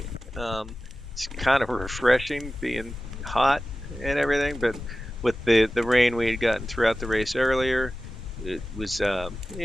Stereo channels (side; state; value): both; normal; correlation 0.95